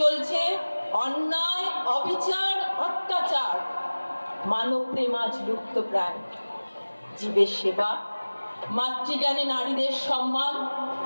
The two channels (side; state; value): both; inverted; correlation -1.00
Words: অন্যায় অবিচার অত্যাচার মানব প্রেম আজ লুপ্ত প্রায় জীবের সেবা মাতৃজ্ঞানী নারীদের সম্মান